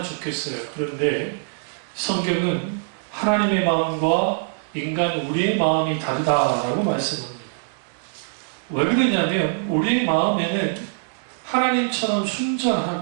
좋겠어요. 그런데 성경은 하나님의 마음과 인간 우리의 마음이 다르다라고 말씀합니다. 왜 그러냐면 우리의 마음에는 하나님처럼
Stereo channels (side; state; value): left; silent; digital silence